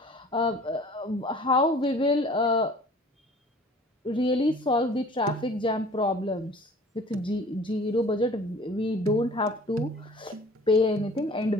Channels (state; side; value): normal; both; correlation 0.48